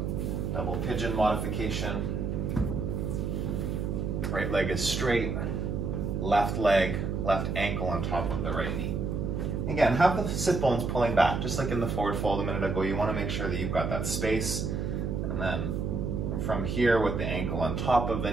double pigeon modification. Right leg is straight, left leg, left ankle on top of the right knee. Again, have the sit bones pulling back, just like in the forward fold a minute ago. You want to make sure that you've got that space, and then in from here with the ankle on top of the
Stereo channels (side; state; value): right; noise; hum, 1 dB below the sound